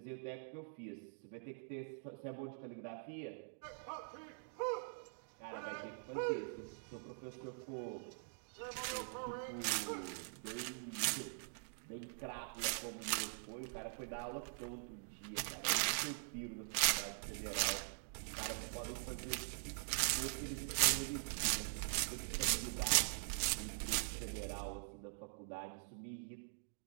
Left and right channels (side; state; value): left; silent; digital silence